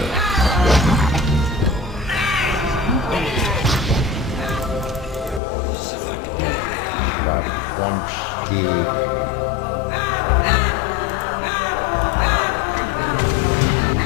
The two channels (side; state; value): right; drops out; at 5.4 s